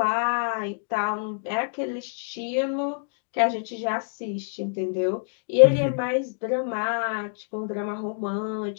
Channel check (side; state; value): right; silent; digital silence